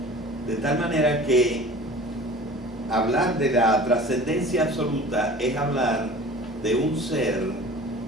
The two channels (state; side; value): normal; both; correlation 0.42